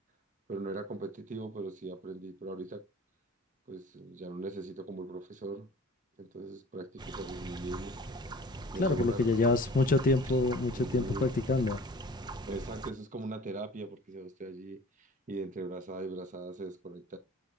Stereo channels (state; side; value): normal; both; correlation 0.46